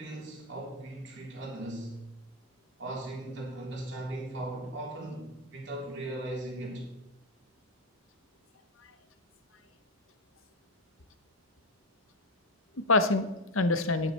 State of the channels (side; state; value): both; normal; correlation 0.08